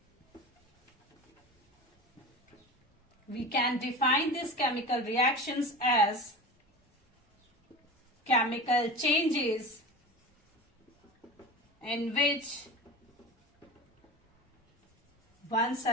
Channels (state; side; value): normal; both; correlation 0.31